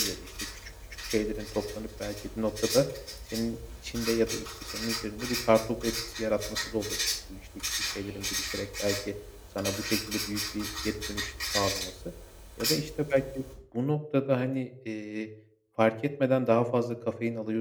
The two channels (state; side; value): identical; both; correlation 1.00